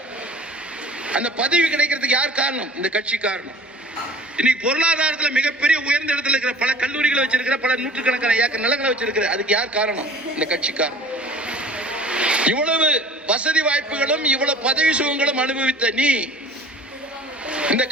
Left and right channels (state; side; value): normal; both; correlation 0.45